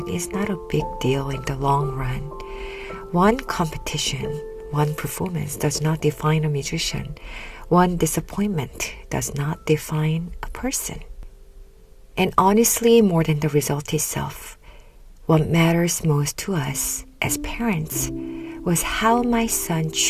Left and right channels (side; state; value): both; identical; correlation 1.00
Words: is not a big deal in the long run. One competition, one performance does not define a musician. One disappointment does not define a person. And honestly, more than the result itself, what matters most to us as parents was how my son